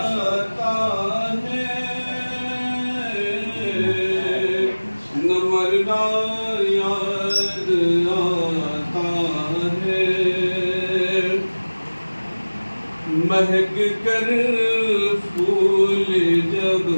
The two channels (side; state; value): both; inverted; correlation -1.00